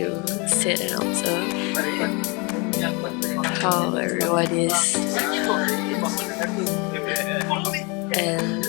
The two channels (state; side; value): quieter; right; 29.9 dB